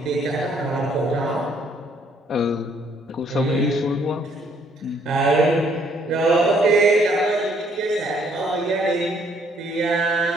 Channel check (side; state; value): both; normal; correlation 0.66